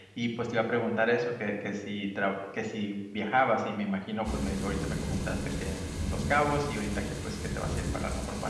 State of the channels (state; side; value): identical; both; correlation 1.00